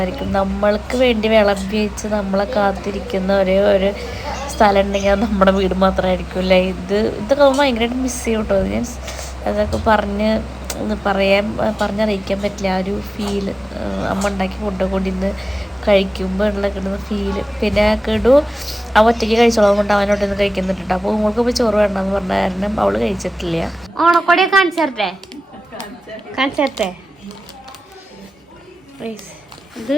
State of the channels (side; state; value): both; normal; correlation 0.97